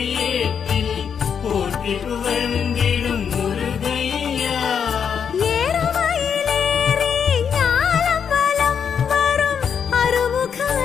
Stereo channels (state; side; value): quieter; right; 7.2 dB